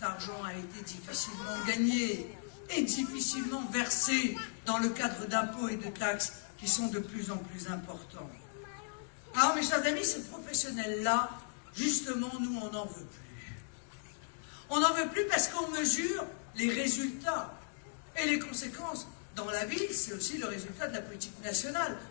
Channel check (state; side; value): silent; right; digital silence